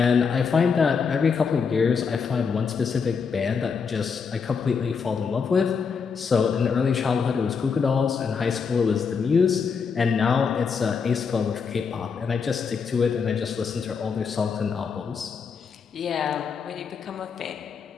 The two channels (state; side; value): quieter; right; 5.8 dB